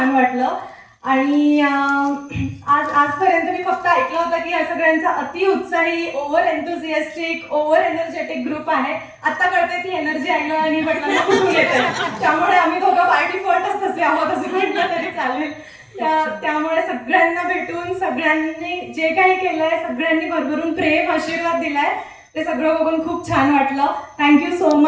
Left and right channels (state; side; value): identical; both; correlation 1.00